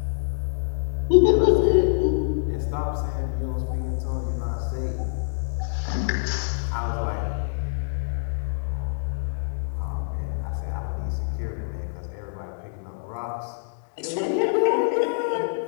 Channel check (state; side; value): silent; right; digital silence